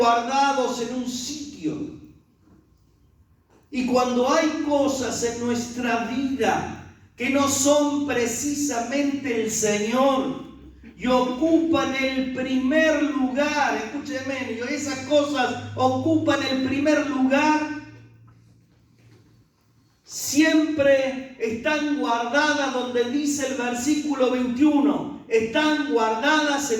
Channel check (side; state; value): both; identical; correlation 1.00